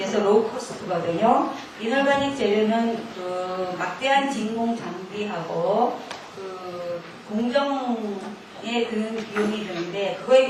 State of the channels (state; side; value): identical; both; correlation 1.00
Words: 로우 코스트거든요. 이놀가닉 재료는 그 막대한 진공 장비하고 그 공정에 드는 비용이 드는데 그거에